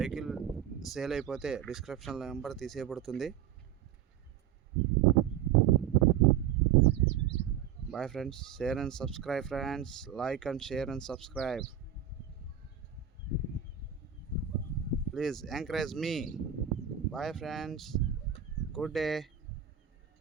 సేల్ అయిపోతే డిస్క్రిప్షన్లో నెంబర్ తీసేయబడుతుంది. Bye friends, share and subscribe friends. Like and share and subscribe. Please encourage me. Bye friends. Good day.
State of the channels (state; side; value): quieter; left; 9.6 dB